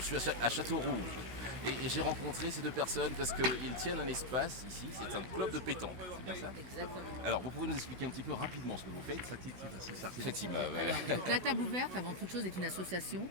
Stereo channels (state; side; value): late; left; 16 ms